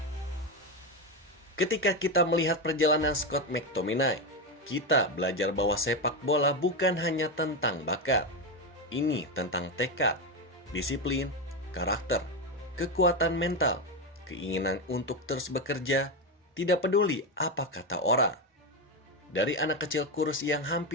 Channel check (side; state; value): both; normal; correlation 0.12